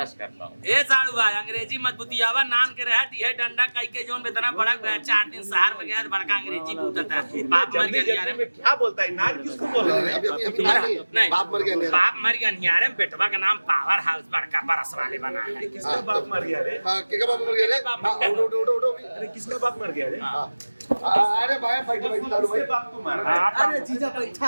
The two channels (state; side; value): inverted; both; correlation -1.00